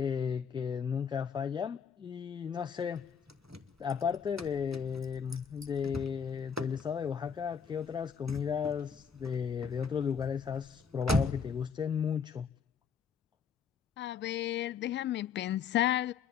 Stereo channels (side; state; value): right; quieter; 6.6 dB